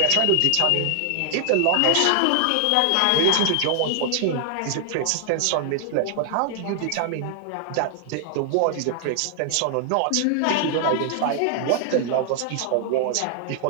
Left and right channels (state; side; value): different; both; correlation 0.00